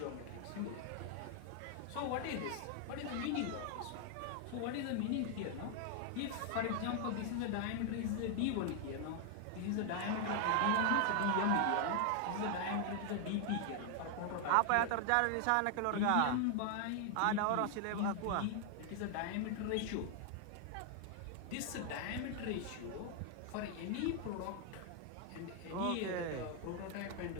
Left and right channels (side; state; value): both; different; correlation 0.00